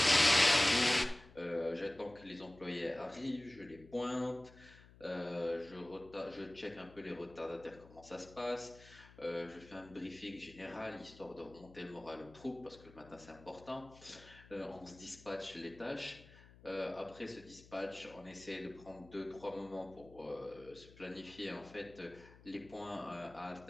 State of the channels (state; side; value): noise; left; hum, 21 dB below the sound